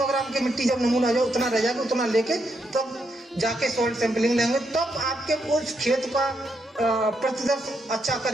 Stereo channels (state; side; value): normal; both; correlation 0.79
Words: ग्राम की मिट्टी जब नमूना आ जाए उतना रह जाएगा, उतना लेके तब जाके सॉइल सैंपलिंग लेंगे, तब आपके उस खेत का प्रतिदर्श अच्छा